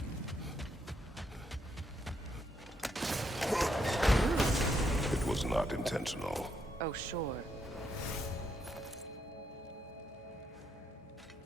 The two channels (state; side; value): normal; both; correlation 0.77